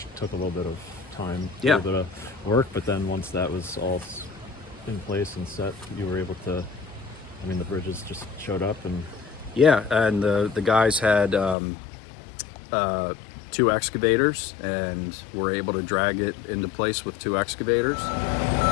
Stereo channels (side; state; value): right; drops out; at 11.6 s